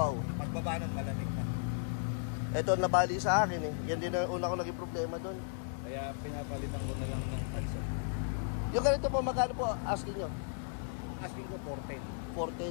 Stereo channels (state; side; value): silent; right; 54 dB below the other